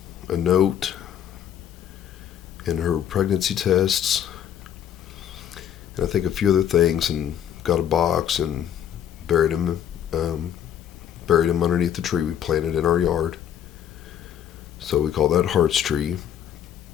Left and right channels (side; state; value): right; quieter; 9.8 dB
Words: a note and her pregnancy tests, and I think a few other things, and got a box and buried him underneath the tree we planted in our yard. So we call that Heart's Tree,